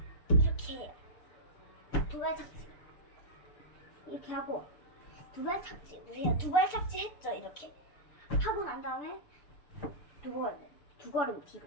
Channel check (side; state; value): right; late; 6.8 ms